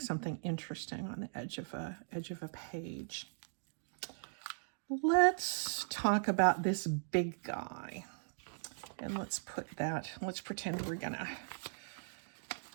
something interesting on the edge of a page. Let's talk about this big guy. And let's pretend we're going to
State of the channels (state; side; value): silent; left; digital silence